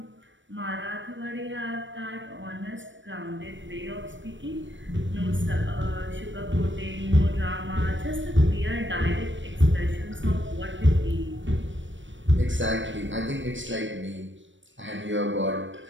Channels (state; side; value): late; left; 0.55 ms